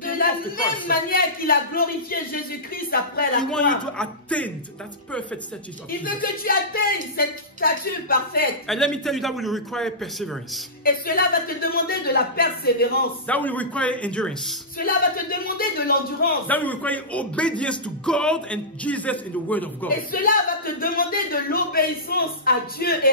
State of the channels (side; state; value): both; normal; correlation -0.17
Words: came la off the même cross. manière qu'il a glorifié Jésus-Christ après la He wants you to croix. attain that perfect status of Il veut Jesus. que tu atteignes cette stature parfaite. And let me tell you, that will require perseverance. Et cela va te demander de la persévérance. That will require endurance. Cela va te demander de l'endurance. That will require obedience to God and Jesus in the Word of God. Et cela va te demander de l'obéissance à Dieu et